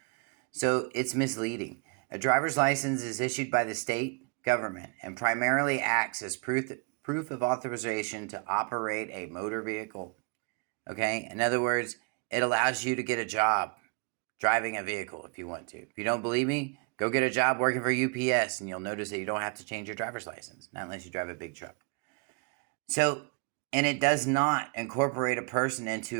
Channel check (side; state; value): left; quieter; 35.4 dB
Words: So, it's misleading. A driver's license is issued by the state government and primarily acts as proof of authorization to operate a motor vehicle. Okay? In other words, it allows you to get a job driving a vehicle if you want to. If you don't believe me, go get a job working for UPS and you'll notice that you don't have to change your driver's license, not unless you drive a big truck. So, and it does not incorporate a person